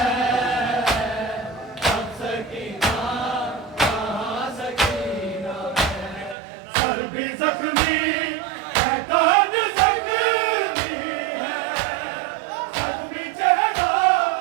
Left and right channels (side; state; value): left; drops out; at 6.4 s